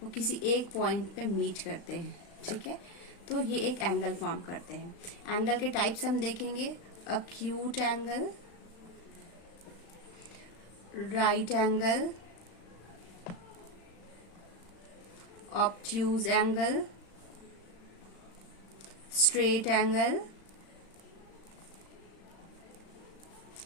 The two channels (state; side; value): late; right; 35 ms